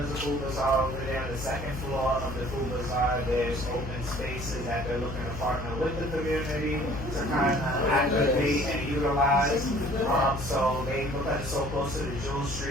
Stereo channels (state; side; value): noise; left; hum, 8 dB below the sound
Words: of Food Bazaar over there on the second floor of the Food Bazaar, there's open spaces that they're looking to partner with the community to kind of activate and utilize. So they look at it so close to the jewel